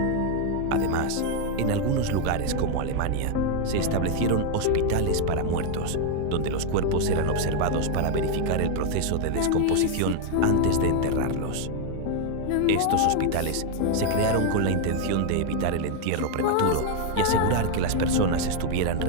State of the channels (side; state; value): both; different; correlation 0.01